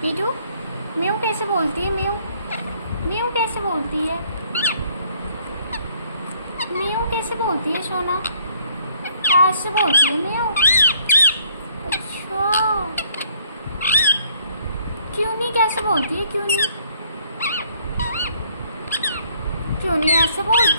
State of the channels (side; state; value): both; inverted; correlation -0.63